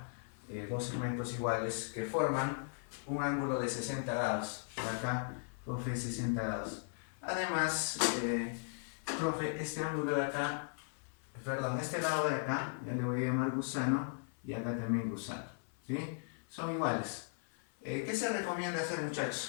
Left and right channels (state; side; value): silent; right; 53 dB below the other